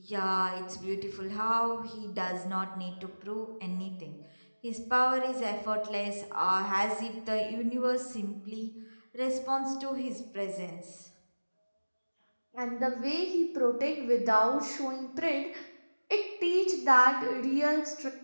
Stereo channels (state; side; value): inverted; both; correlation -1.00